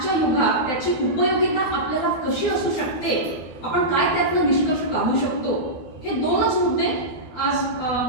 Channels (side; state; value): right; late; 12 ms